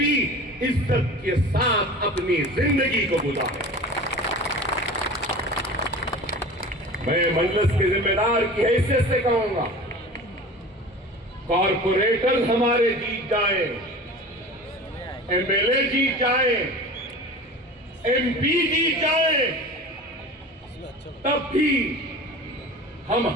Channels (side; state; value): both; normal; correlation 0.37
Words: عزت کے ساتھ اپنی زندگی کو گزارے۔ میں مجلس کے ذمہ دار کی حیثیت سے کہوں گا، کارپوریٹر ہمارے جیت جائیں، ایم ایل اے جیت جائیں، ایم پی جیت جائیں، تب بھی ہم